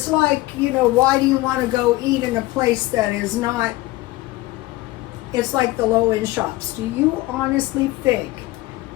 like, why do you want to go eat in a place that is not, it's like the low-end shops. Do you honestly think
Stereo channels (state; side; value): quieter; right; 18.6 dB